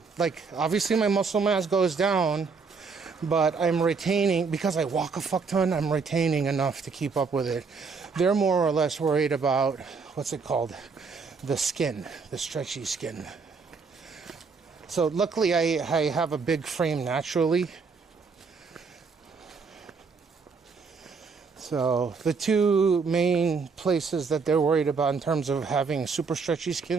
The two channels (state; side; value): quieter; left; 4.9 dB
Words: like, obviously my muscle mass goes down, but I'm retaining, because I walk a fuck ton, I'm retaining enough to keep up with it. They're more or less worried about, what's it called? The skin, the stretchy skin. So luckily I have a big frame naturally. So the two main places that they're worried about in terms of having super stretchy